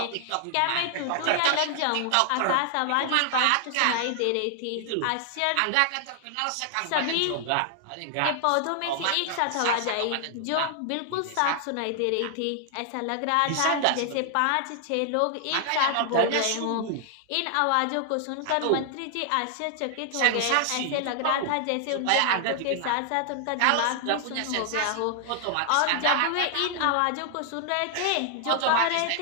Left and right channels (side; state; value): both; different; correlation 0.00